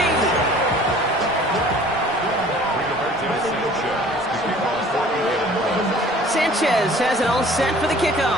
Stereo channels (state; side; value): normal; both; correlation 0.50